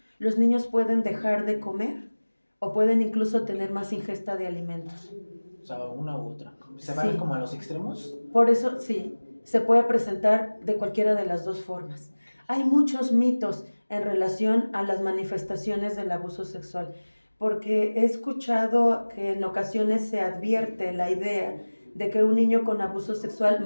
los niños pueden dejar de comer o pueden incluso tener más ingesta de alimentos. O sea, una u otra. ¿Se van como a los extremos? Por eso, sí, se puede presentar de cualquiera de las dos formas. Hay muchos mitos en relación a las manifestaciones del abuso sexual, porque he escuchado que en ocasiones se advierte la idea de que un niño con abuso sexual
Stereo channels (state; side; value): inverted; both; correlation -1.00